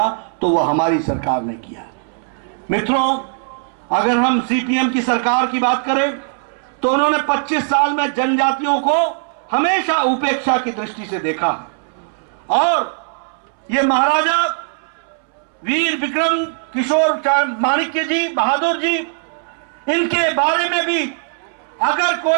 तो वह हमारी सरकार ने किया। मित्रों, अगर हम सीपीएम की सरकार की बात करें तो उन्होंने 25 साल में जनजातियों को हमेशा उपेक्षा की दृष्टि से देखा है। और ये महाराजा वीर विक्रम किशोर माणिक्य जी, बहादुर जी, इनके बारे में भी अगर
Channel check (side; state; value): left; silent; 67 dB below the other